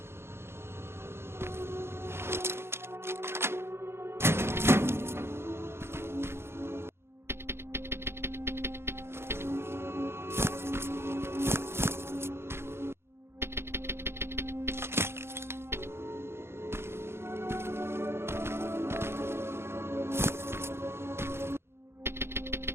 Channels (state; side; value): late; left; 0.12 ms